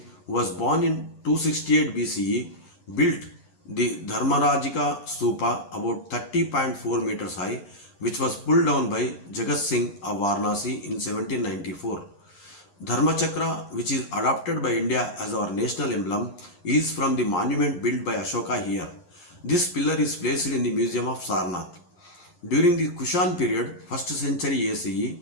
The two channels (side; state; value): right; late; 11 ms